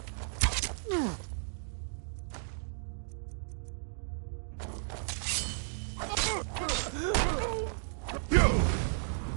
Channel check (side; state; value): left; silent; digital silence